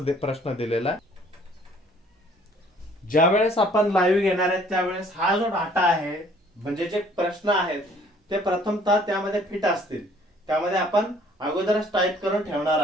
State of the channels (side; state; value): both; normal; correlation 0.58